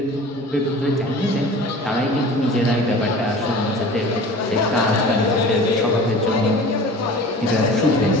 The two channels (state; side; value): normal; both; correlation 0.41